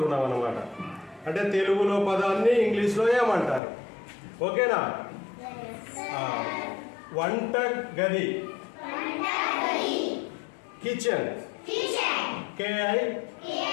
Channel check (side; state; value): right; drops out; at 3.6 s